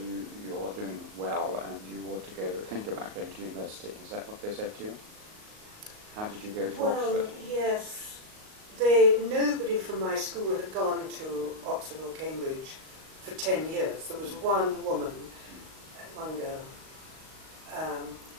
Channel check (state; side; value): late; left; 38 ms